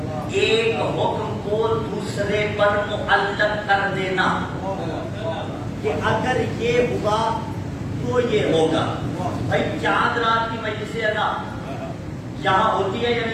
ایک حکم کو دوسرے پر معلق کر دینا، کہ اگر یہ ہوا تو یہ ہوگا۔ بھائی چاند رات کی مجلس ادا یہاں ہوتی ہے یا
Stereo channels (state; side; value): identical; both; correlation 1.00